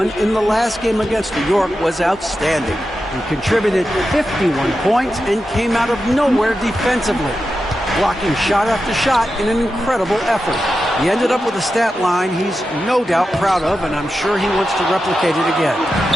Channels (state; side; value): normal; both; correlation 0.90